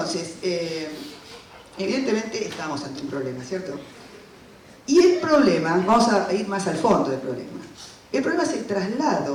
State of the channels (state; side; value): identical; both; correlation 1.00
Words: evidentemente estamos ante un problema, ¿cierto? Y el problema, vamos a ir más al fondo del problema, el problema es el